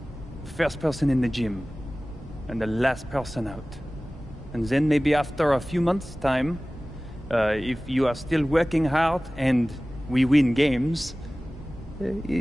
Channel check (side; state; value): both; normal; correlation 0.98